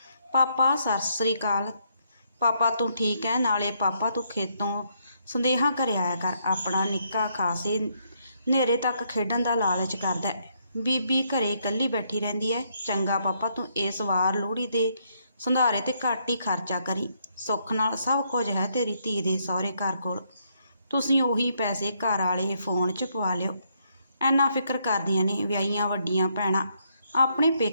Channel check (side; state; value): both; inverted; correlation -0.74